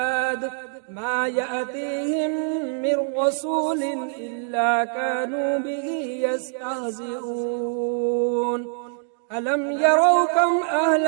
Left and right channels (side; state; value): left; silent; digital silence